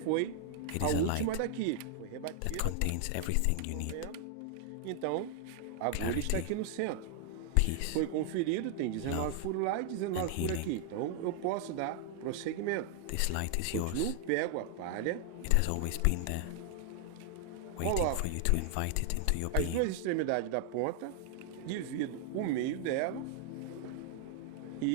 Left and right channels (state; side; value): different; both; correlation 0.00